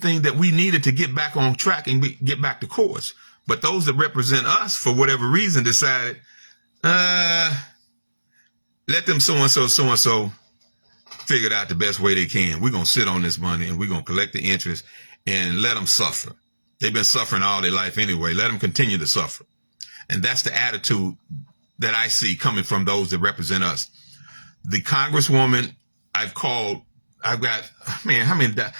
that we needed to get back on track and get back to course. But those that represent us, for whatever reason, decided, let them so-and-so figure it out the best way they can. We're going to sit on this money and we're going to collect the interest and let them suffer. They've been suffering all their life anyway. Let them continue to suffer. And that's the attitude that I see coming from those that represent us. The Congresswoman I've called, I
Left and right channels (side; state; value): both; inverted; correlation -1.00